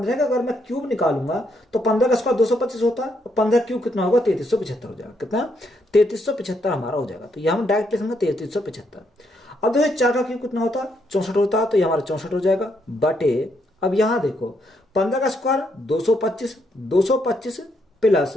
का अगर मैं क्यूब निकालूंगा तो 15 का स्क्वायर 225 होता है और 15 क्यूब कितना होगा, 3375 हो जाएगा। कितना 3375 हमारा हो जाएगा। तो यह हम डायरेक्ट लिखेंगे 3375। अब देखो 4 का क्यूब कितना होता है, 64 होता है, तो ये हमारा 64 हो जाएगा। बटे अब यहां देखो 15 का स्क्वायर 225 प्लस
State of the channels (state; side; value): normal; both; correlation 0.75